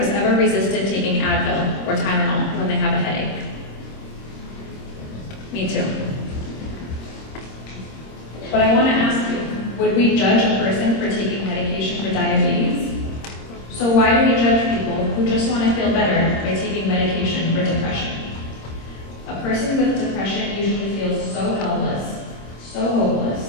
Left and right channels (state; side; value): late; right; 26 ms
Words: ever resisted taking Advil or Tylenol when they have a headache? Me too. But I want to ask you, would Would we judge a person for taking medication for diabetes? So why do we judge people who just want to feel better by taking medication for depression? A person with depression usually feels so helpless, so hopeless.